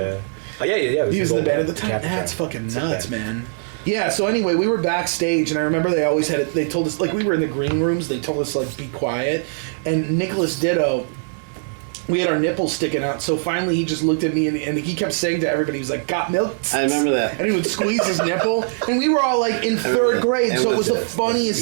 Oh, yeah. It He was his in the old band at the time. Capitron. That's fucking It's a nuts, band. man. Yeah, so anyway, we were backstage, and I remember they always had it. They told us, like, we were in the green rooms, they told us, like, be quiet. And Nicholas Ditto, we had our nipples sticking out, so finally he just looked at me, and he kept saying to everybody, he was like, got milk? I remember that. And he would squeeze his nipple, and we were all, like, in remember 3rd that. grade, so it was the Yeah, funniest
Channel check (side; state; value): left; silent; digital silence